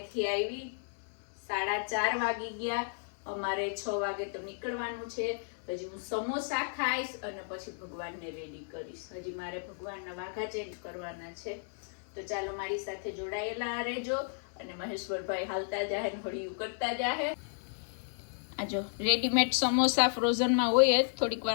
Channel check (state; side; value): silent; right; digital silence